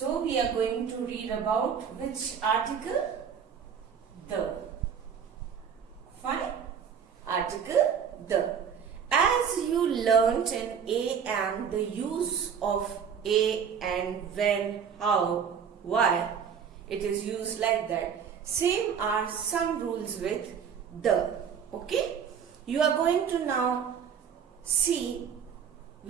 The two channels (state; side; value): quieter; left; 7.3 dB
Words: we are going to read about which article? The. Fine? Article the. As you learnt in a and the use of a and when, how, why, it is used like that. Same are some rules with the. Okay? You are going to now see